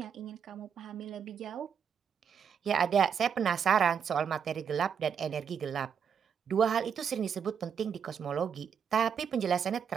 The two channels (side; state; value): left; quieter; 7.4 dB